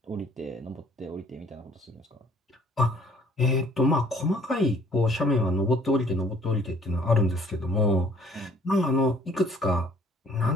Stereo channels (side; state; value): both; normal; correlation 0.58